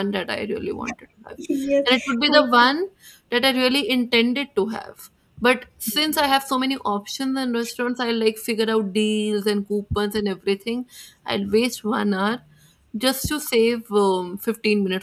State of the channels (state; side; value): identical; both; correlation 1.00